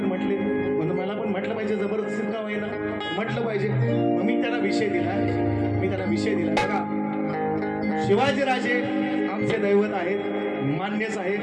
म्हटले, म्हणून मला पण म्हटलं पाहिजे, जबरदस्ती का होईना म्हटलं पाहिजे. मग मी त्यांना विषय दिला. बघा, शिवाजीराजे आमचे दैवत आहेत, मान्यच आहे.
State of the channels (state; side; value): identical; both; correlation 1.00